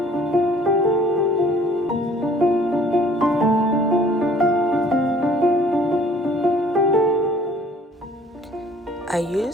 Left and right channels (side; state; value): both; normal; correlation 0.55